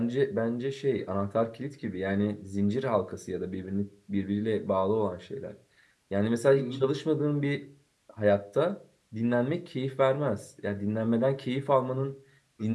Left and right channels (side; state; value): both; identical; correlation 1.00